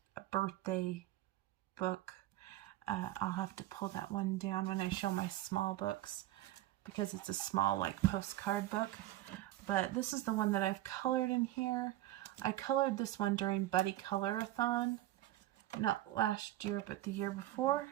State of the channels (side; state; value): left; quieter; 15.1 dB